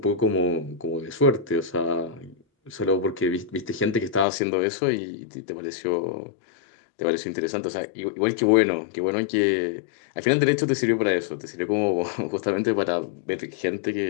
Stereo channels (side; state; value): right; drops out; at 4.2 s